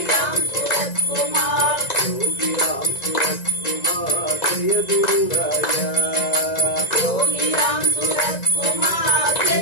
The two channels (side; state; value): right; late; 1.9 ms